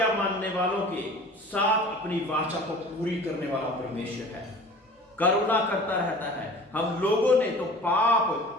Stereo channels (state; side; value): normal; both; correlation 0.43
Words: मानने वालों के साथ अपनी वाचा को पूरी करने वाला परमेश्वर है, करुणा करता रहता है। हम लोगों ने तो पाप,